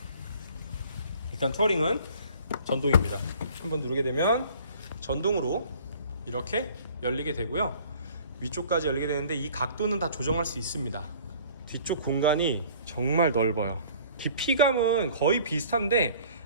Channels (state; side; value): inverted; both; correlation -0.51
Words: 일단 투어링은 전동입니다. 한번 누르게 되면 전동으로 이렇게 열리게 되고요, 위쪽까지 열리게 되는데 이 각도는 다 조정할 수 있습니다. 뒤쪽 공간이 정말 넓어요. 깊이감은 거의 비슷한데